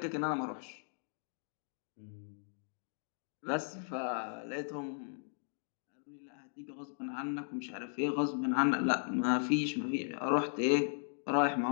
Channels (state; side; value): silent; right; digital silence